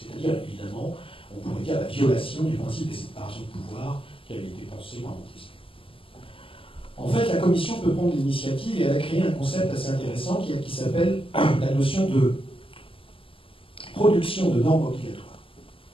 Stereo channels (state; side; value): late; right; 0.26 ms